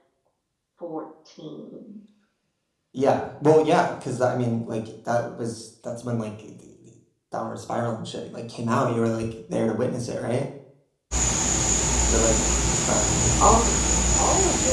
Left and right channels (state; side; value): identical; both; correlation 1.00